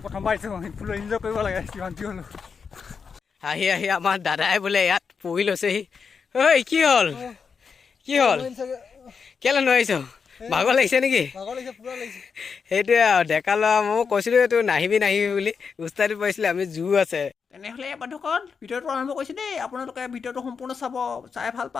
প্ৰথমবাৰ আহিছোঁ ফুল এনজয় কৰিব লাগে যিমান কি হ'লো আহি আহি আমাৰ দাদাই বোলে ইয়াত পঢ়ি লৈছেহি ঐ কি হ'ল কেলৈ নোৱাৰিছ ভাগৰ লাগিছে নেকি সেইটোৱে আৰু ডেকা ল'ৰা মই কৈছিলোঁ এইটো নাহিবি বুলি উস্তাদি পাইছিলে আমি জোৰ আছে তেনেহ'লে বন্ধুসকল ভিডিঅ'টো আৰম্ভ কৰিছোঁ দেই আপোনালোকে ভিডিঅ'টো সম্পূৰ্ণ চাই ভাল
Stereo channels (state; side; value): quieter; right; 5.8 dB